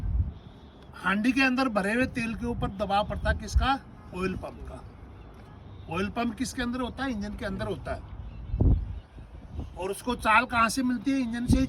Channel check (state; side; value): identical; both; correlation 1.00